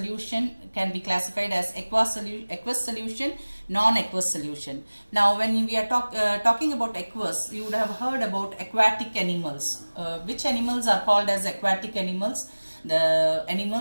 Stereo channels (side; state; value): both; inverted; correlation -1.00